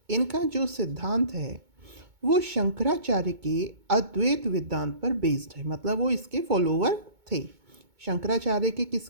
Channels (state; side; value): late; left; 2.2 ms